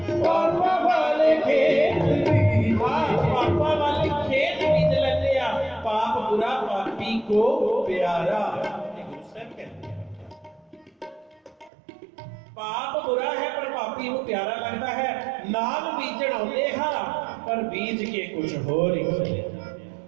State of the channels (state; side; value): drops out; left; at 11.7 s